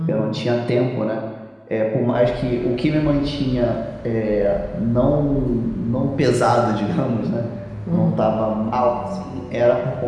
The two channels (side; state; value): both; identical; correlation 1.00